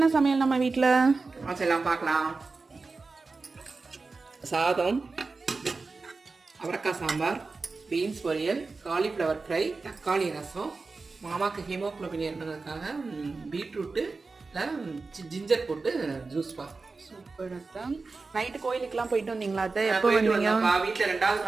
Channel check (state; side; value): quieter; left; 4.0 dB